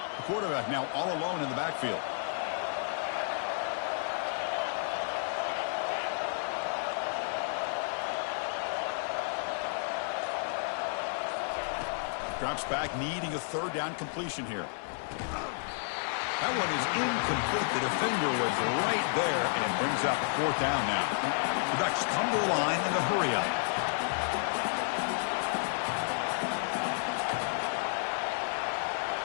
The quarterback now all alone in the backfield. Drops back, needing a 3rd down completion here. That one is incomplete. The defender was right there, and it brings up 4th down now. The Ducks come to the line in a hurry up.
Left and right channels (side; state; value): right; silent; 57 dB below the other